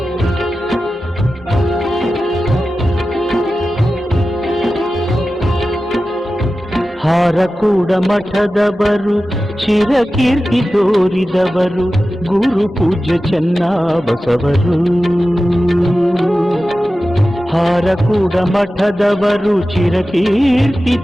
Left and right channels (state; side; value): normal; both; correlation 0.94